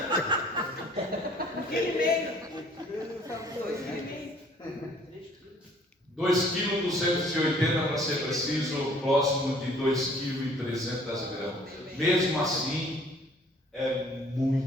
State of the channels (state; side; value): normal; both; correlation 0.56